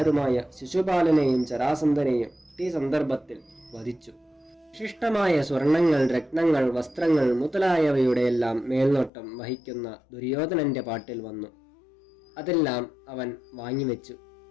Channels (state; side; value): drops out; right; at 9.1 s